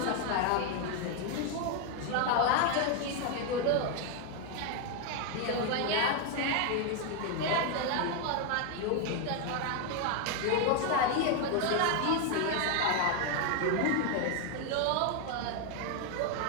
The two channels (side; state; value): both; different; correlation 0.01